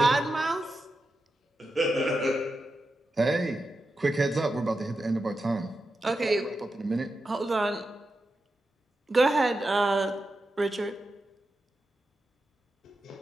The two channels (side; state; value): both; normal; correlation 0.89